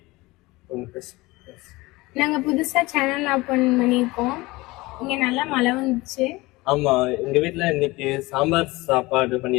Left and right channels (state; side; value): quieter; right; 21.4 dB